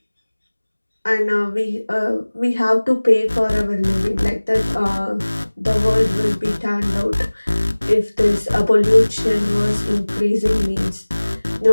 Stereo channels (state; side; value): inverted; both; correlation -1.00